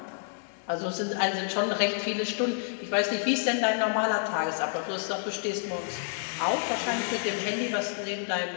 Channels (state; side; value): silent; right; digital silence